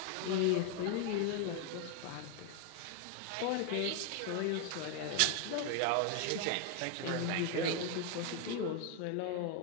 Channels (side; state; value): both; different; correlation 0.01